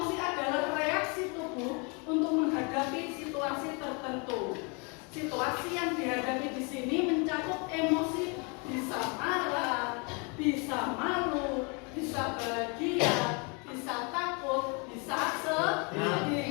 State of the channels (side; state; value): right; quieter; 32.7 dB